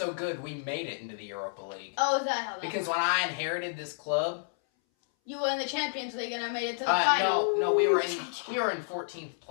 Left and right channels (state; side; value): silent; right; 58 dB below the other